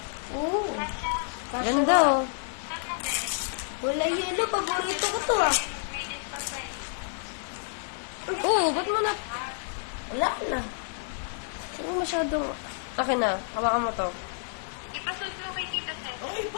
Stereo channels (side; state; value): right; silent; digital silence